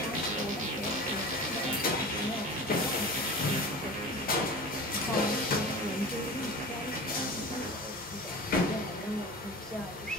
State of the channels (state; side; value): normal; both; correlation 0.35